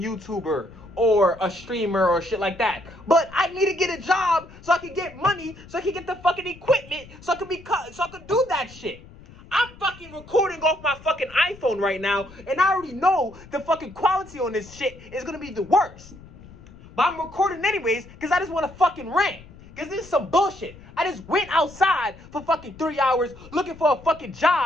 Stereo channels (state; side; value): noise; left; rumble, 20 dB below the sound